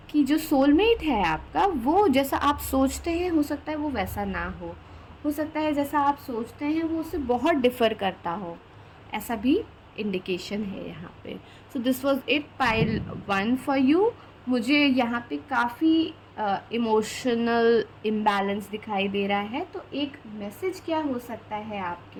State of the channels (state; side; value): identical; both; correlation 1.00